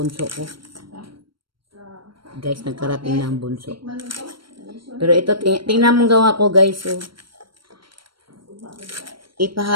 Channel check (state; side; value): late; left; 0.73 ms